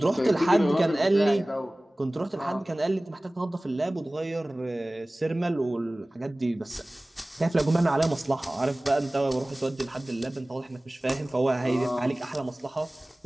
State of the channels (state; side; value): normal; both; correlation 0.98